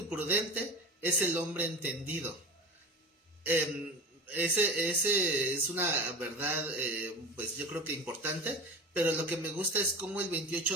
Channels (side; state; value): both; normal; correlation 0.29